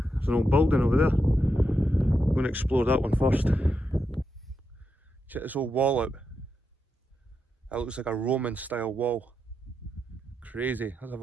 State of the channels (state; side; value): normal; both; correlation 0.85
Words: there's an old building over there. I'm going to explore that one first. Check this old wall out. That looks like a Roman style wall. Crazy. Let's have